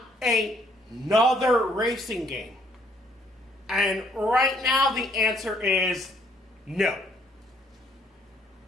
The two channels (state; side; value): normal; both; correlation 0.66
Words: another racing game? And right now, the answer is no.